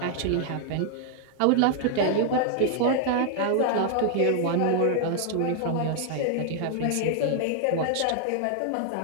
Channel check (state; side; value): different; both; correlation -0.01